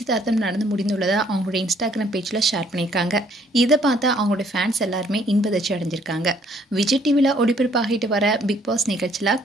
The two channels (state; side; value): normal; both; correlation 0.64